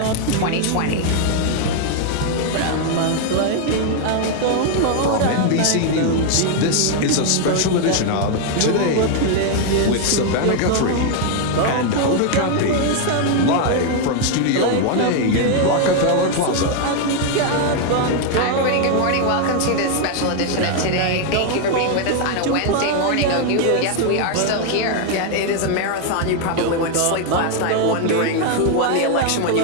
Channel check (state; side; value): different; both; correlation 0.00